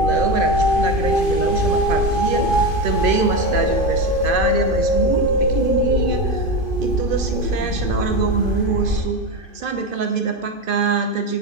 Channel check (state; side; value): late; left; 2.5 ms